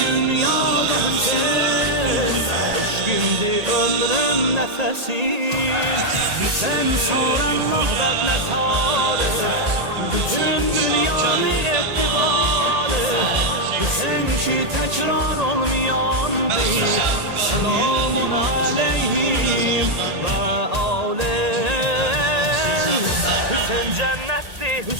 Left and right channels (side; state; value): left; late; 1.8 ms